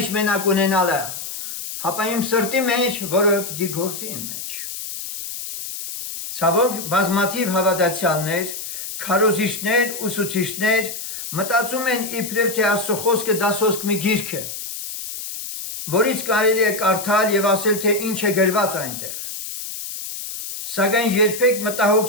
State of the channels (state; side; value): noise; left; hiss, 8 dB below the sound